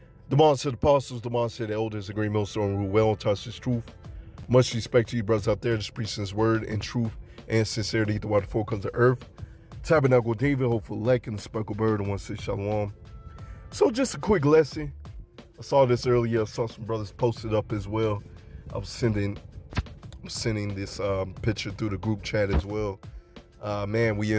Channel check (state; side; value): identical; both; correlation 1.00